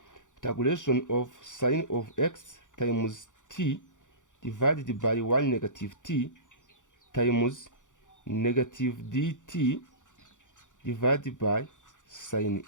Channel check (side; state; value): right; late; 0.86 ms